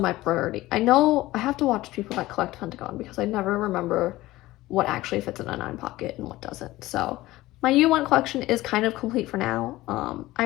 priority. I know I have to watch people that collect Pentagon because I never remember what actually fits in a 9 pocket and what doesn't. So my U1 collection is kind of complete for now.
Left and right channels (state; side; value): quieter; right; 17.6 dB